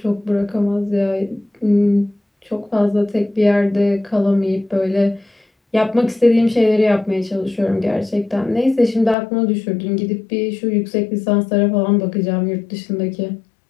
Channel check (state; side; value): drops out; right; at 9.2 s